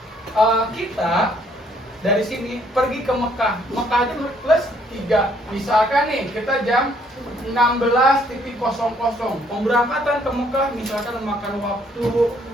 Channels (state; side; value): normal; both; correlation 0.66